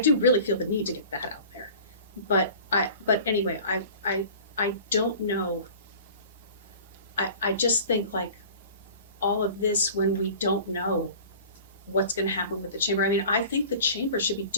really feel the need to get that out there. But anyway, I don't know. I just think all of this, when we don't know what's going to happen with the chamber. I mean, I think the chamber should be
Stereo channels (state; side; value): inverted; both; correlation -0.43